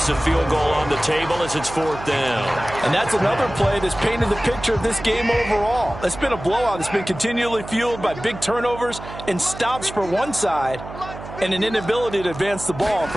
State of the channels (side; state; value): right; noise; hum, 12 dB below the sound